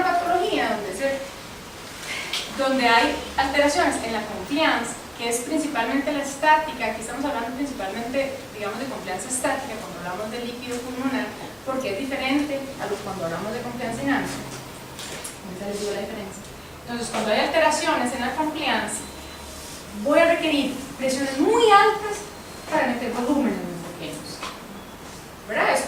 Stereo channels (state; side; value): identical; both; correlation 1.00